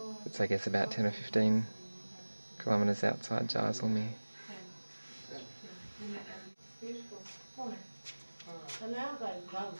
It's I guess about 10 or 15 kilometres outside Jaisalmer.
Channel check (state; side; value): inverted; both; correlation -1.00